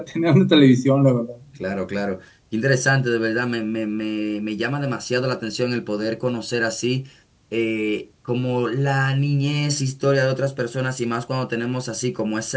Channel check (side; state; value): both; identical; correlation 1.00